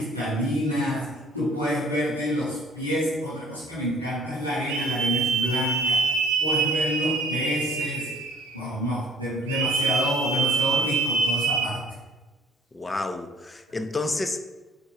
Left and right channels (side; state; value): both; normal; correlation 0.56